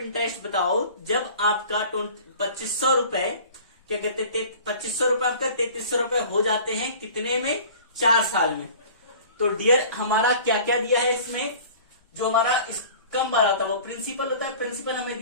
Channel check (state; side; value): inverted; both; correlation -0.44